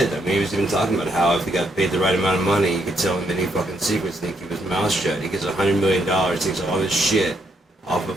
I mean, he was even talking about how if he got paid the right amount of money, you could tell him any fucking secrets and he'd keep his mouth shut. He gets $100 million, takes all this shit off of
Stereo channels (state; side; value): normal; both; correlation 0.75